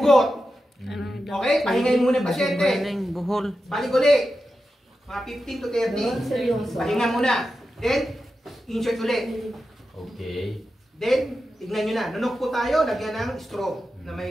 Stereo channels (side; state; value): both; normal; correlation 0.90